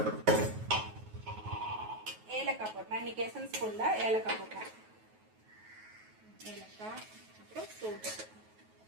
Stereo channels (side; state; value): left; late; 9.3 ms